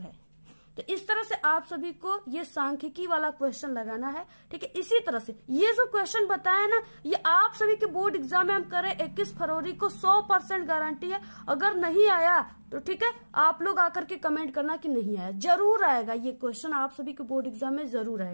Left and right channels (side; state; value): both; inverted; correlation -1.00